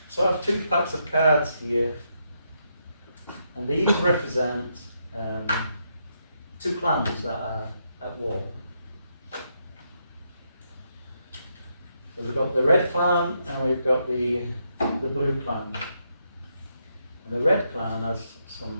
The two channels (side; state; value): both; inverted; correlation -0.79